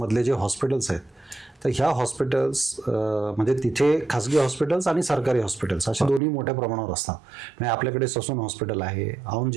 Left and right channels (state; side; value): drops out; left; at 6.2 s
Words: जे हॉस्पिटल्स आहेत, तर ह्या हॉस्पिटल्स म्हणजे तिथे खासगी हॉस्पिटल्स आणि सरकारी हॉस्पिटल्स असे दोन्ही मोठ्या प्रमाणावर असतात. म्हणजे आपल्याकडे ससून हॉस्पिटल आहे, औंध